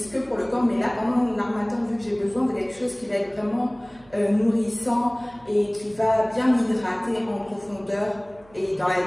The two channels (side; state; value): right; noise; hum, 27 dB below the sound